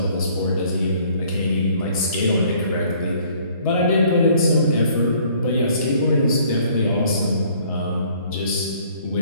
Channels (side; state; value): both; inverted; correlation -0.59